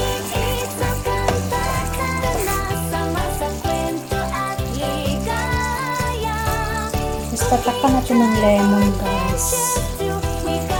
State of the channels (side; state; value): both; identical; correlation 1.00